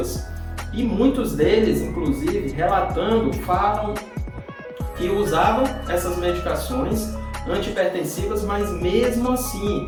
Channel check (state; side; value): identical; both; correlation 1.00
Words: E muitos deles, inclusive, relatando, falam que usavam essas medicações antihipertensivas, mas mesmo assim